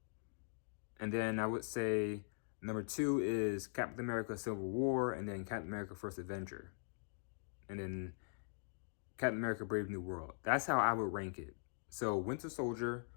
And then I would say number 2 is Captain America Civil War, and then Captain America First Avenger. And then Captain America Brave New World. That's how I would rank it. So Winter Soldier,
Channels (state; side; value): silent; right; digital silence